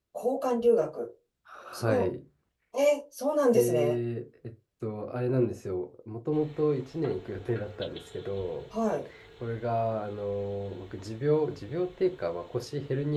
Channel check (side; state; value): both; identical; correlation 1.00